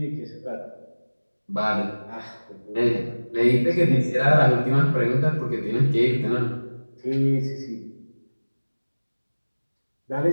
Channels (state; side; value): inverted; both; correlation -1.00